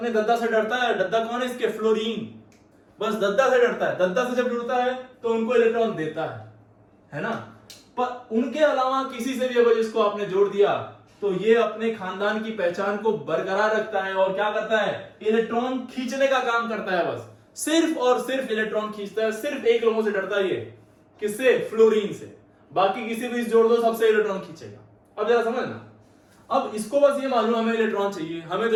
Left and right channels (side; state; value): both; identical; correlation 1.00